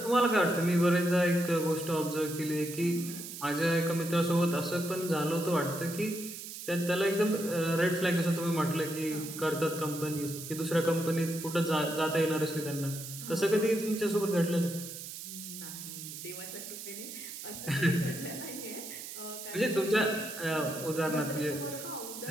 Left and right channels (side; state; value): right; noise; hiss, 10 dB below the sound